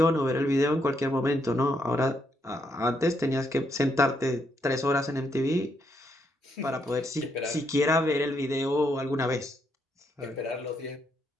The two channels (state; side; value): normal; both; correlation 0.76